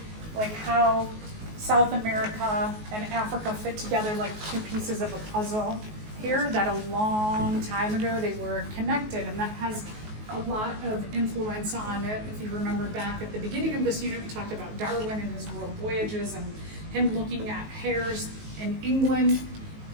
like how South America and Africa fit together like two pieces of a puzzle here, that a long time ago they were connected, and that has a lot of influence on it. If you remember back at the beginning of this unit, we talked about Darwin and his world voyages and him looking at hares in England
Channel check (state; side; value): late; left; 19 ms